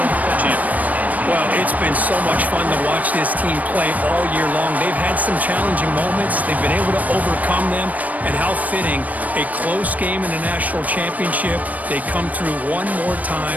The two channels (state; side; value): late; left; 0.074 ms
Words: champions. Well, it's been so much fun to watch this team play all year long. They've had some challenging moments. They've been able to overcome them. And how fitting, a close game in the national championship. They come through one more